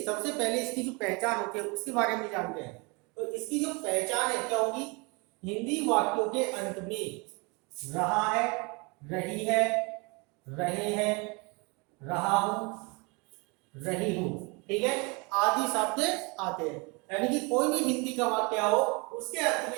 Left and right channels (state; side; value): quieter; left; 29.4 dB